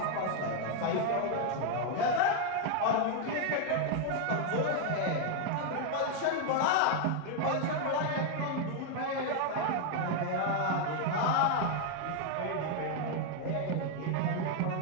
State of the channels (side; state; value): both; different; correlation 0.00